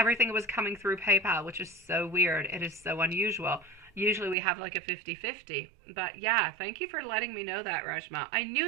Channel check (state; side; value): drops out; left; at 4.4 s